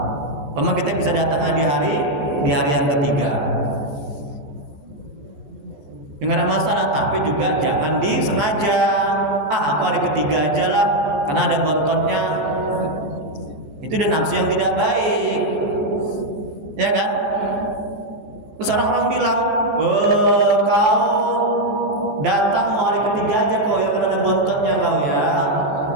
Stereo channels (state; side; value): late; left; 15 ms